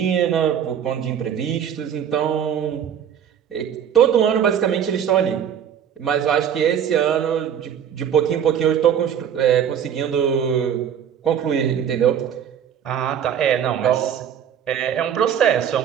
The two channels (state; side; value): quieter; left; 8.8 dB